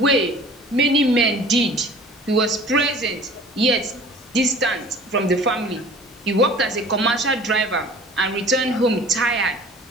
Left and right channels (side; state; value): both; normal; correlation 0.46